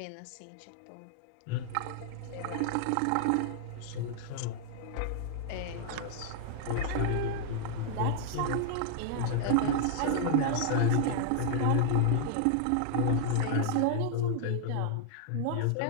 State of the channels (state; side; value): different; both; correlation 0.00